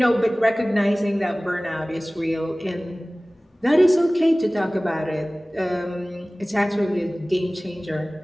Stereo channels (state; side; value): normal; both; correlation 0.98